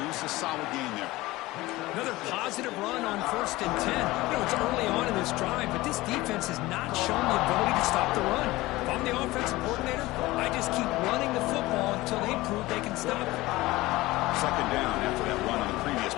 a solid gain there. Another positive run on 1st and 10. You know, it's early on in this drive, but this defense has not shown the ability to stop the run. If I'm the offensive coordinator, I just keep running the football until they prove they can stop it. Second down after that run on the previous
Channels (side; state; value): right; quieter; 19.2 dB